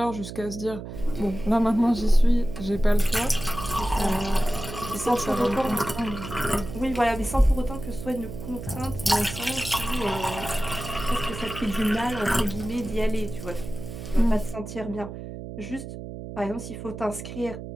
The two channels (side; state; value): right; noise; hum, 10 dB below the sound